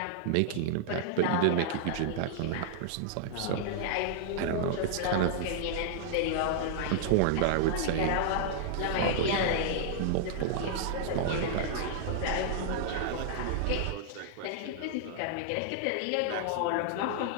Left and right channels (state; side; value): different; both; correlation -0.01